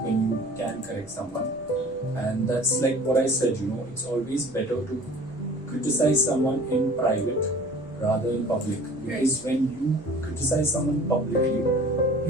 you can correct someone, and that's like what I said. It's always better to criticize someone in private rather in public, because when you criticize someone publicly,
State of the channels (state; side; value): normal; both; correlation 0.46